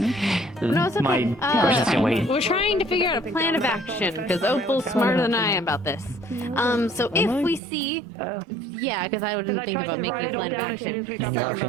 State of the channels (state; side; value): drops out; left; at 7.6 s